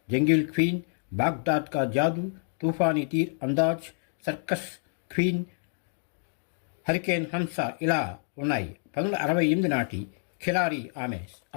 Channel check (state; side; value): silent; right; 59 dB below the other